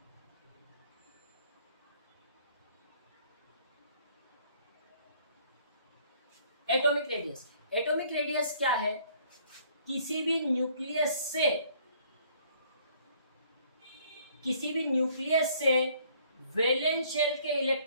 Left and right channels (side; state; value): both; inverted; correlation -0.60